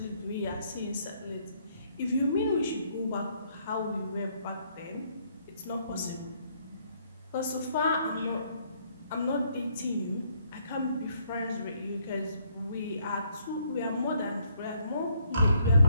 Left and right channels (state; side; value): inverted; both; correlation -0.69